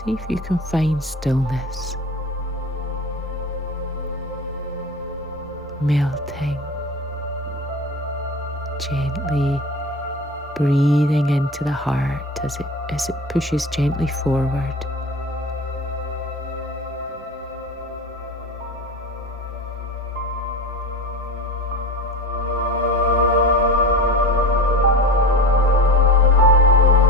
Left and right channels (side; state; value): both; normal; correlation 0.32